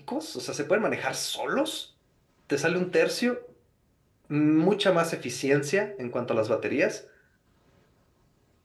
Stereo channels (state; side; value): identical; both; correlation 1.00